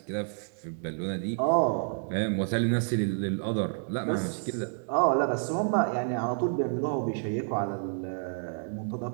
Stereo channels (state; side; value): silent; left; 58 dB below the other